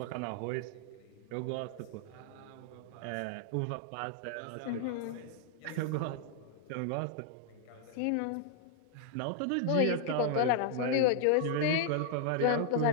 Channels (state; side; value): different; both; correlation -0.01